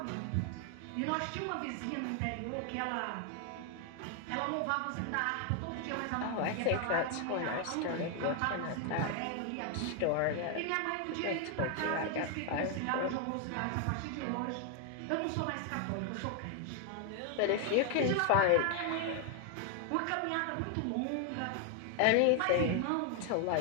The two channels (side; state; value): both; different; correlation 0.00